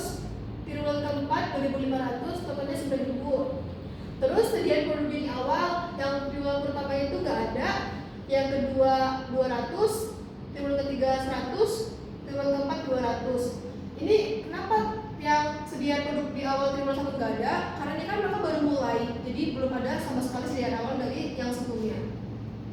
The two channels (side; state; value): both; identical; correlation 1.00